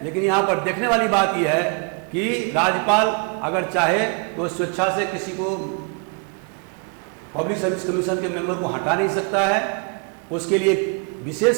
लेकिन यहाँ पर देखने वाली बात यह है कि राज्यपाल अगर चाहे तो स्वेच्छा से किसी को पब्लिक सर्विस कमीशन के मेंबर को हटा नहीं सकता है। उसके लिए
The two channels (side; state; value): left; quieter; 37.2 dB